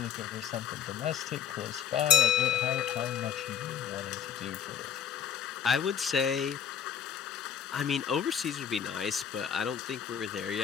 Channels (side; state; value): right; quieter; 8.4 dB